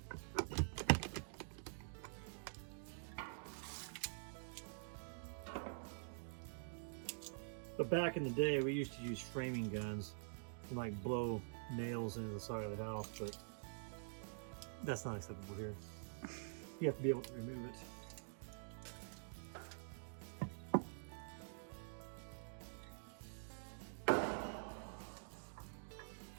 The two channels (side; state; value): left; silent; digital silence